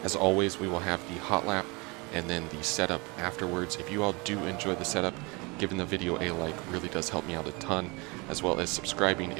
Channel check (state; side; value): quieter; left; 27.4 dB